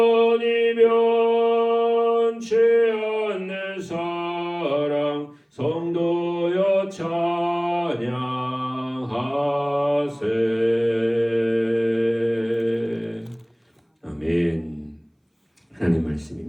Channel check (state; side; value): identical; both; correlation 1.00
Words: 변치 않는 사랑 성도여 찬양하세. 아멘. 하나님